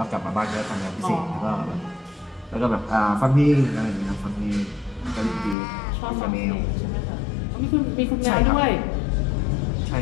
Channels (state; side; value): drops out; right; at 5.6 s